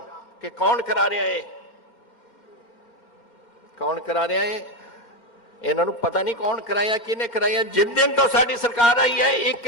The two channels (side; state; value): right; late; 2.1 ms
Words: ਕਿ ਕੌਣ ਕਰਾ ਰਿਹਾ ਹੈ, ਕੌਣ ਕਰਾ ਰਿਹਾ ਹੈ, ਇਹਨਾਂ ਨੂੰ ਪਤਾ ਨਹੀਂ ਕੌਣ ਕਰਾਇਆ, ਕਿਹਨੇ ਕਰਾਇਆ। ਜਿਸ ਦਿਨ ਤੋਂ ਸਾਡੀ ਸਰਕਾਰ ਆਈ ਹੈ ਇੱਕ